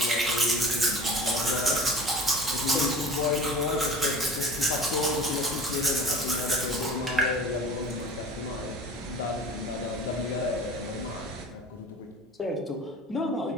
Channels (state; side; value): normal; both; correlation 0.40